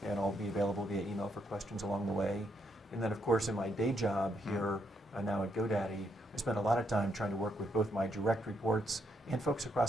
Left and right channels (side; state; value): both; normal; correlation 0.77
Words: and I'll be available via email for questions along the way. And then, of course, in my day job here now at GoDaddy, I spend a lot of time trying to work with both my direct reports and folks